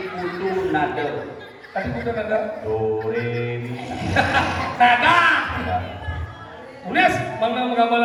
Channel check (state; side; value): identical; both; correlation 1.00